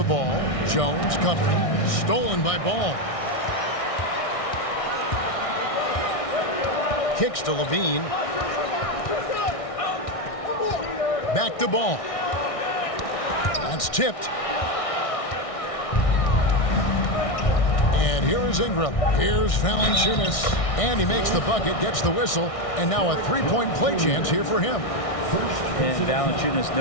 ball. Jones covering. Stolen by Ball. Kicks to Levine. Back to Ball. That's tipped. And here is Ingram. Here's Valanciunas. And he makes the bucket, gets the whistle, and now a three-point play chance here for him. And Valanciunas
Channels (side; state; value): right; late; 1.6 ms